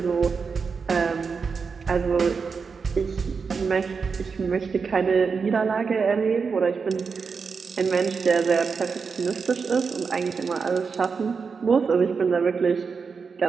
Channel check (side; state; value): left; quieter; 5.4 dB